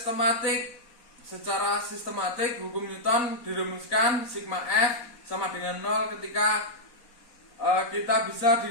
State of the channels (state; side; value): late; right; 4.1 ms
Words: secara sistematik hukum Newton dirumuskan sigma F sama dengan 0 ketika kita bisa